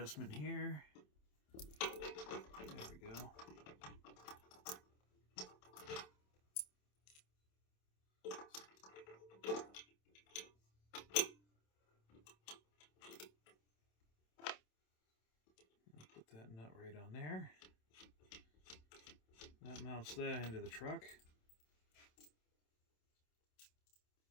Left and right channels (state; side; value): late; right; 27 ms